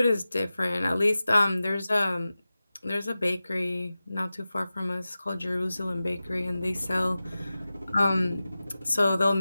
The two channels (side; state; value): both; inverted; correlation -0.95